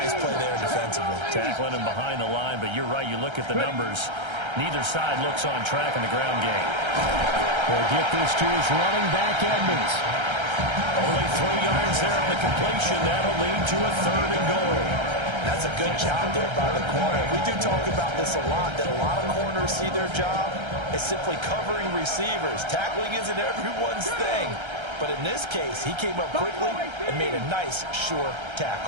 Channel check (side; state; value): left; late; 1.3 ms